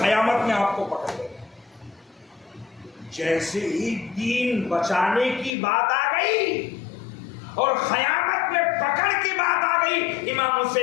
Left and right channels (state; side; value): drops out; right; at 5.5 s